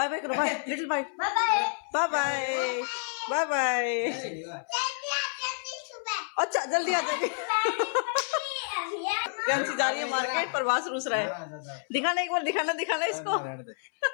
bye करो, bye little, bye bye bye bye bye. अच्छा जल्दी आ जाएगी। कैंसी जा रही है मार्केट, प्रभास रूस रहा है। दिखाना एक बार, दिखाना दिखाना इसको।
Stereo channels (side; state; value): right; silent; 59 dB below the other